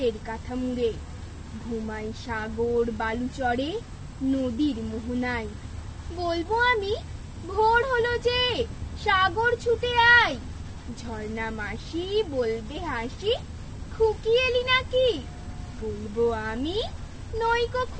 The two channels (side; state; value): both; identical; correlation 1.00